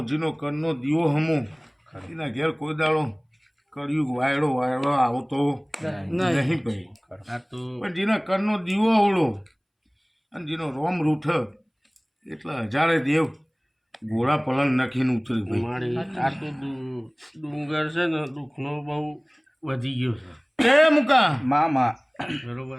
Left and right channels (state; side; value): identical; both; correlation 1.00